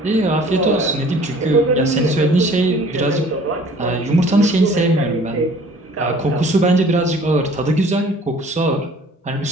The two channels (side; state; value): both; normal; correlation 0.52